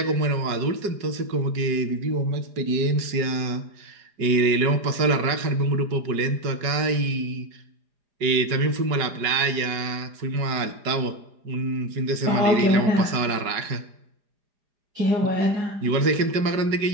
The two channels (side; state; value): left; late; 4.9 ms